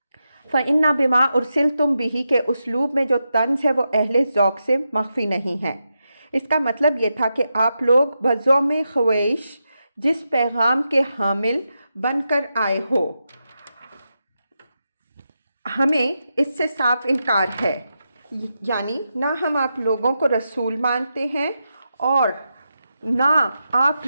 فَإِنَّا بِمَا أُرْسِلْتُمْ بِهِ کے اسلوب میں جو طنز ہے وہ اہل ذوق سے مخفی نہیں ہے۔ اس کا مطلب یہ تھا کہ آپ لوگ بزوم خویش جس پیغام کے حامل بن کر آئے ہو، ہمیں اس سے صاف انکار ہے، یعنی نہ ہم آپ لوگوں کو رسول مانتے ہیں اور نہ آپ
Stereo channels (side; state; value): both; inverted; correlation -0.87